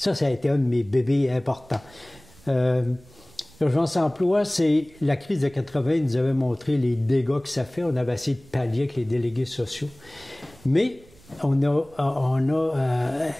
a été un de mes bébés importants. Urgence Emploi, c'est la crise de 80 nous avait montré les dégâts que ça fait. On avait essayé de pallier avec les délégués sociaux. Mais il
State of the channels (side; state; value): right; noise; rumble, 26 dB below the sound